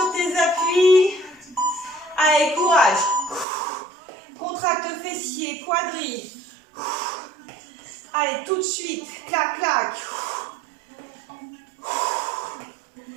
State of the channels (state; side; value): drops out; left; at 3.5 s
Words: tes appuis. Allez, courage. Contracte fessier, quadri. Allez, tout de suite. Clac, clac.